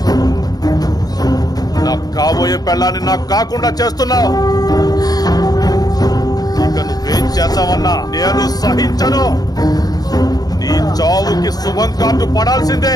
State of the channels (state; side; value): late; right; 0.19 ms